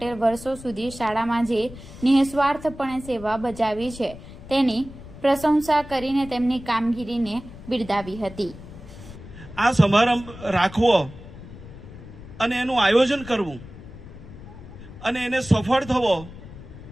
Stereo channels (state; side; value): noise; left; rumble, 16 dB below the sound